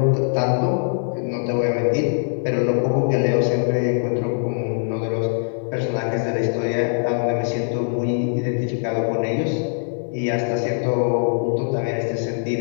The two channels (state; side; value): silent; right; 57 dB below the other